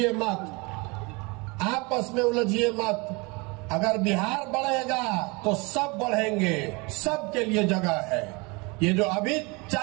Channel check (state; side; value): quieter; left; 27.5 dB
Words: मत, आपस में उलझिए मत। अगर बिहार बढ़ेगा तो सब बढ़ेंगे, सबके लिए जगह है। ये जो अभी